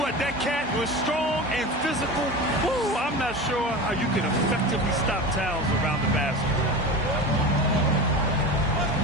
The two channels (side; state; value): both; normal; correlation 0.29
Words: what, that cat was strong and physical. Woo, I'm not sure how you can effectively stop Towns around the basket.